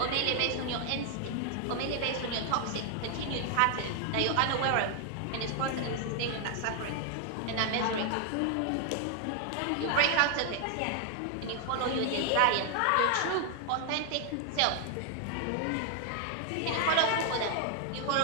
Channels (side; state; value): both; different; correlation 0.00